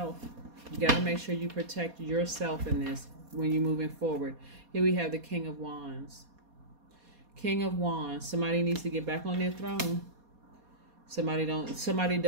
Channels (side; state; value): left; late; 4.2 ms